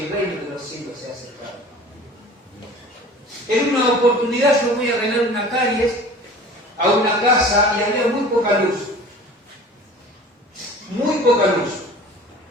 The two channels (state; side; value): normal; both; correlation 0.43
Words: el reino de los cielos se ha acercado. En una oportunidad yo voy a arreglar una calle a una casa y había muy poca luz. Muy poca luz.